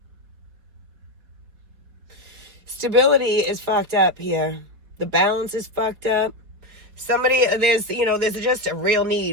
Stability is fucked up here. The balance is fucked up. There's just a real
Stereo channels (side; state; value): left; late; 4.7 ms